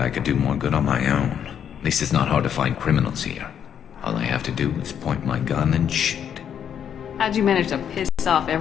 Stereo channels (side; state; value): right; quieter; 8.7 dB